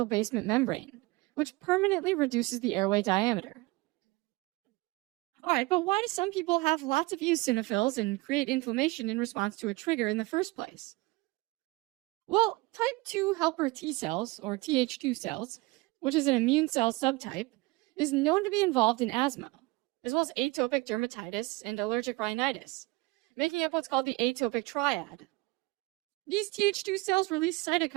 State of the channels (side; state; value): left; quieter; 23.0 dB